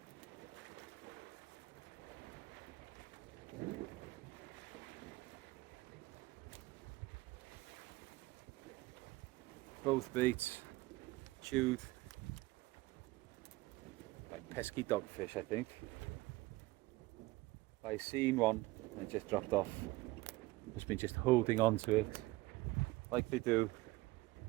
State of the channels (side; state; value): left; quieter; 20.1 dB